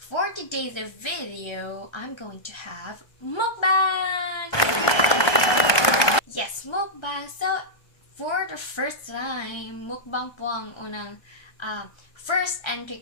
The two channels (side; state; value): right; late; 1.3 ms